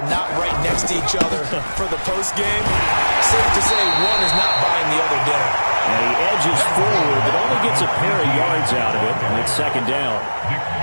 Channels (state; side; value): inverted; both; correlation -1.00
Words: not right next to each other for the postgame. Safe to say one is not buying the other dinner. And he edges forward, but only gets a pair of yards out of it, and it's second down.